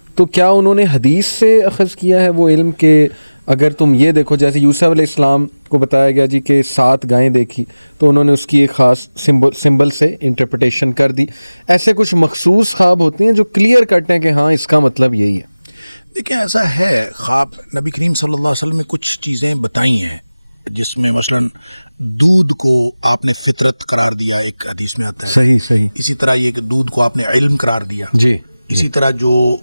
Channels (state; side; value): inverted; both; correlation -0.99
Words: تو کیا انہوں نے حدیث سے اخذ کیا ہے وہ علم کہ اگر تم یہ دیکھو, جیسے یوسف علیہ السلام کو بتایا گیا جی کہ 7 گائیں دیکھی تو انہوں نے اس کی ایک خاص سمبل سے انٹرپریٹیشن کر دی. ایسے کچھ مخصوص خواب ہوتے ہیں جو کلیئر کٹ ہیں کہ ہاں اس کا مطلب یہی ہے. دیکھیں ایسا ہے, خواب نبی کریم صلی اللہ علیہ وسلم نے کچھ چیزیں بتائی ہیں جس میں مثلا دودھ کو آپ نے فطرت قرار دیا, ایک حدیث میں آتا ہے. صحیح. اسی طرح یہ کہ دودھ کو آپ نے علم قرار دیا. جی. اسی طرح جو